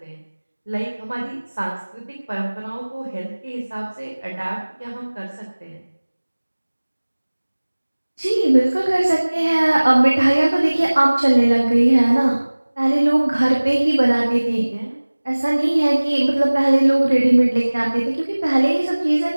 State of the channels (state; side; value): inverted; both; correlation -1.00